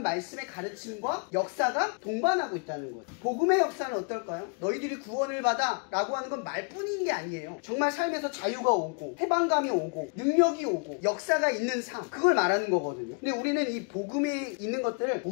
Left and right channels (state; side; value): quieter; right; 38.2 dB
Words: 말씀의 가르침과 역사가 동반하고 있다는 거예요. 복음의 역사는 어떨까요? 너희들이 구원을 받아 라고 하는 건 말뿐인 게 아니에요. 정말 삶에서 자유가 오고 해방감이 오고 능력이 오고 역사가 있는 삶, 그걸 말하는 거거든요. 근데 우리는 이 복음에 있는 것들을